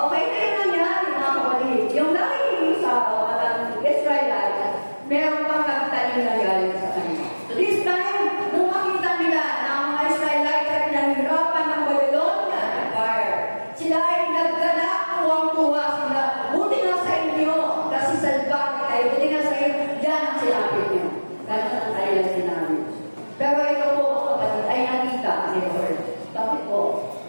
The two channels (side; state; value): both; inverted; correlation -1.00